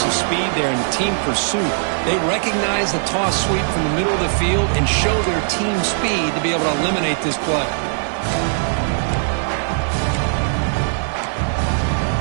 speed there and the team pursuit? They recognize the toss sweep from the middle of the field and show their team speed to be able to eliminate this play.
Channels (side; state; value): left; silent; digital silence